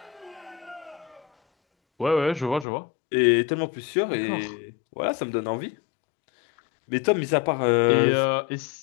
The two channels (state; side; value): drops out; right; at 2.7 s